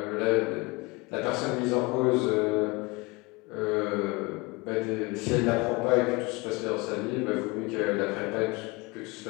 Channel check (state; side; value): quieter; right; 25.3 dB